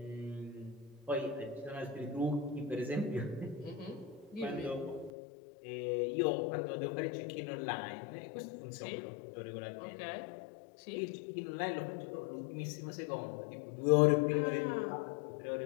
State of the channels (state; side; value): drops out; right; at 5.1 s